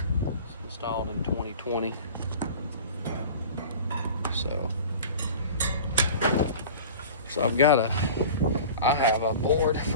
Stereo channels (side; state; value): both; inverted; correlation -0.39